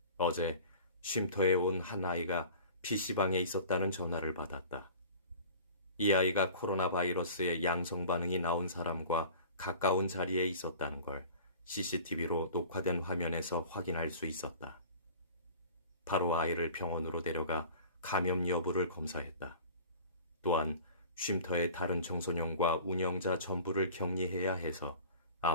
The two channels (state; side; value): inverted; both; correlation -0.42